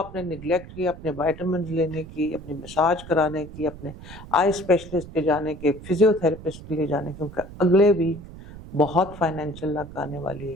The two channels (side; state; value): right; noise; rumble, 15 dB below the sound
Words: निगलेक्ट किया, अपने वाइटामिन लेने की, अपनी मसाज कराने की, अपने आई स्पेशलिस्ट के जाने के, फिजियोथेरेपिस्ट के लिए जाने की, क्योंकि अगले वीक बहुत फाइनेंशियल लक आने वाली